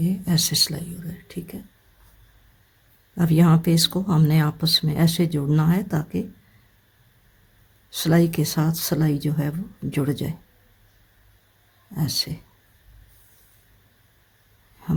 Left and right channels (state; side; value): identical; both; correlation 1.00